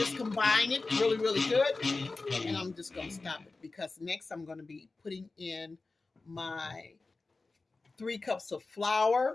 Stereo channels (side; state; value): right; quieter; 3.6 dB